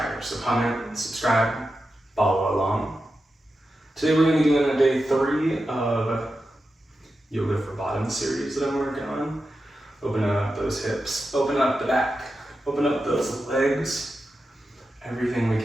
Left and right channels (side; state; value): both; normal; correlation 0.90